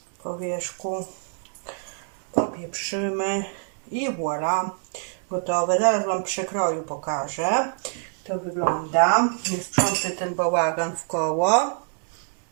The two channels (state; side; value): silent; left; digital silence